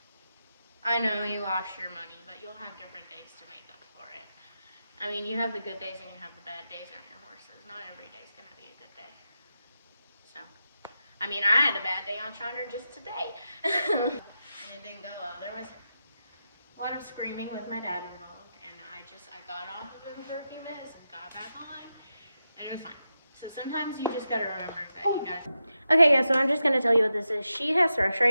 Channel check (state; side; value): inverted; both; correlation -0.88